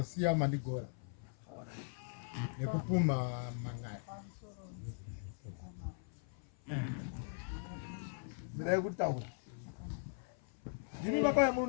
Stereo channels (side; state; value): right; silent; 51 dB below the other